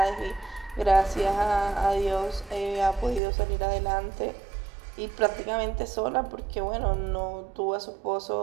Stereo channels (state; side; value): drops out; left; at 3.2 s